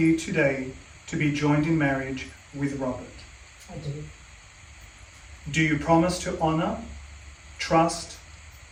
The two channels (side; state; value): both; identical; correlation 1.00